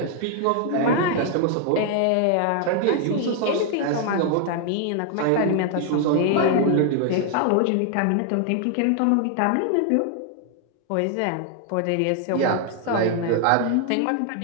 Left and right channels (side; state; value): both; different; correlation 0.00